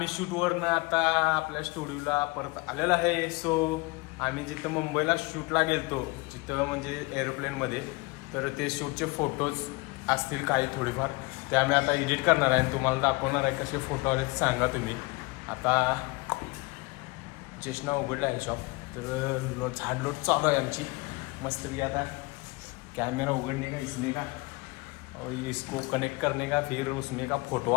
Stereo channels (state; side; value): quieter; right; 25.3 dB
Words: शूटवरनं आता आपल्या स्टुडिओला परत आलेलो आहे. सो आम्ही जिथं मुंबईला शूटला गेलतो, जिथं म्हणजे एरोप्लेनमध्ये, तर ते शूटचे फोटोज असतील काही थोडीफार, ते आम्ही आता एडिट करणार आहे आणि तुम्हाला दाखवणार आहे. कसे फोटो आले सांगा तुम्ही. आता चेष्णा उघडला आहे शॉप, तर झाडलोट चालू आहे आमची मस्तपैकी. आता कैमरा उगड़ने का, इसमें का और इसको कनेक्ट करने का, फिर उसमें का